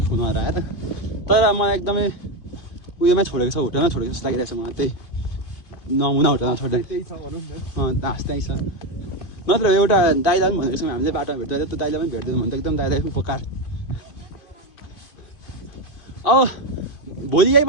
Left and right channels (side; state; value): right; late; 2.5 ms